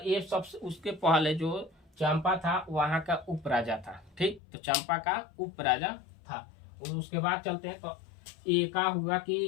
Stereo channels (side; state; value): right; drops out; at 4.4 s